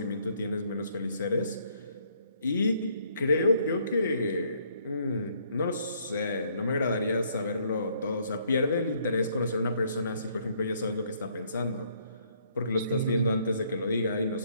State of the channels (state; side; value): inverted; both; correlation -0.67